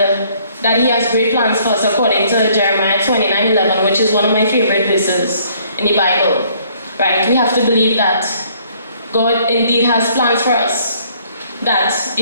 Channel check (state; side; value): inverted; both; correlation -0.62